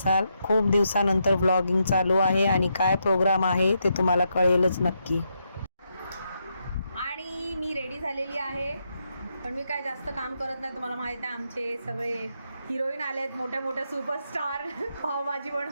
खूप दिवसानंतर व्लॉगिंग चालू आहे आणि काय प्रोग्राम आहे ते तुम्हाला कळेलच नक्की. आणि मी रेडी झालेली आहे, पण मी काय जास्त काम करत नाही. तुम्हाला माहीत आहे आमचे सगळे हिरोईन आले आहेत, मोठ्या मोठ्या सुपरस्टार पावभाजी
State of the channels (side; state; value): both; inverted; correlation -0.81